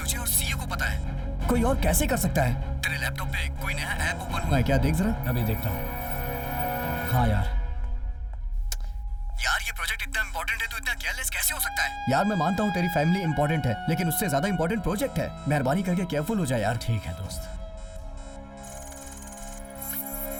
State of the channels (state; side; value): identical; both; correlation 1.00